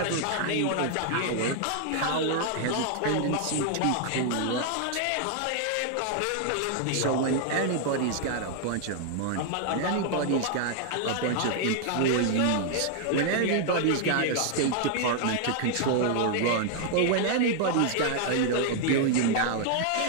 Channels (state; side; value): different; both; correlation 0.00